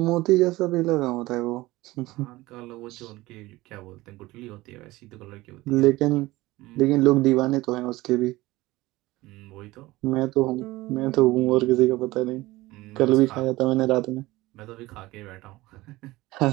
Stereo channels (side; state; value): left; quieter; 19.1 dB